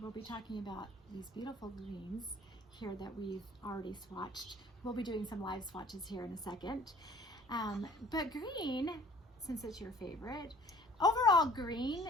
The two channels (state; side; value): normal; both; correlation 0.52